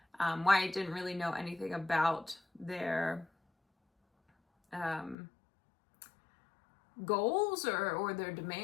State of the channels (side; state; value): right; drops out; at 5.2 s